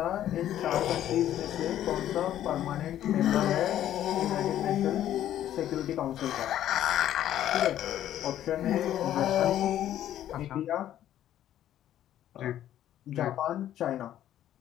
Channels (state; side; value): quieter; right; 11.8 dB